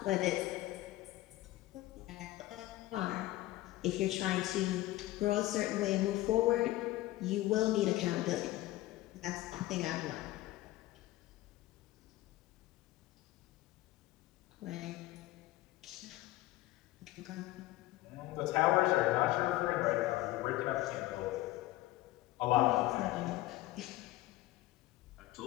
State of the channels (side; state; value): right; quieter; 17.0 dB